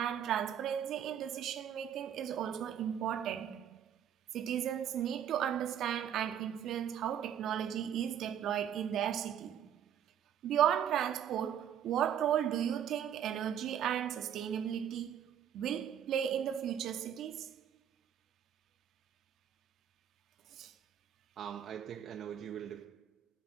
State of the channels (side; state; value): left; quieter; 9.5 dB